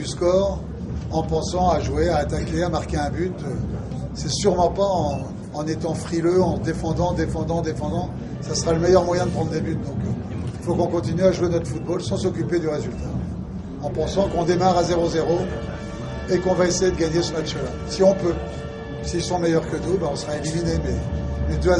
score, en pensant à jouer, à attaquer, à marquer un but. C'est sûrement pas en étant frileux, en défendant. Ça sera le meilleur moyen de prendre des buts. Donc il faut qu'on continue à jouer notre football sans s'occuper du résultat. En pensant qu'on démarre à 0-0 et qu'on va essayer de gagner ce match-là. Si on peut. S'ils sont meilleurs que nous, on sera éliminé. Mais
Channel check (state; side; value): identical; both; correlation 1.00